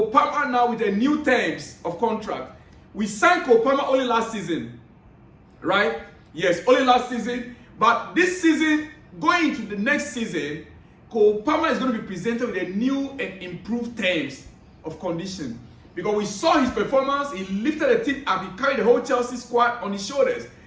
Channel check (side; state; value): both; identical; correlation 1.00